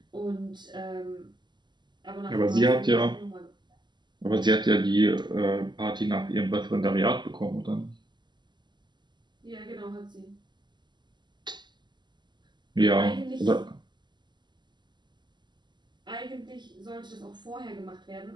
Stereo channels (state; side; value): late; left; 0.21 ms